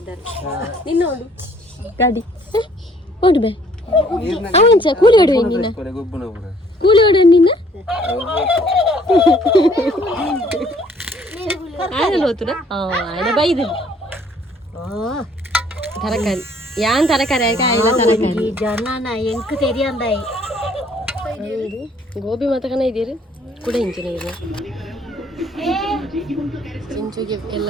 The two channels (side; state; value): both; normal; correlation 0.61